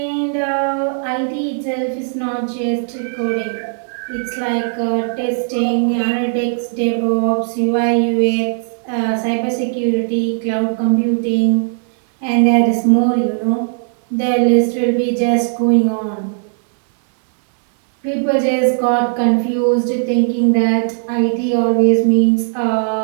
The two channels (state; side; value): silent; left; 62 dB below the other